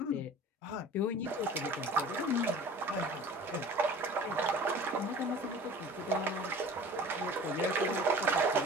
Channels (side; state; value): both; normal; correlation 0.43